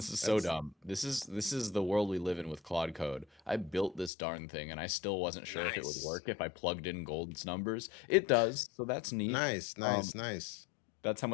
is so That's dumb. This is the world we live in with Claude Code. I built this darn thing and I still wasn't sure if it would nice. work if I plugged in gold's numbers. It does, so that's neat. Nice, Um, nice, nice. that's how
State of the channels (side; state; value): right; drops out; at 4.1 s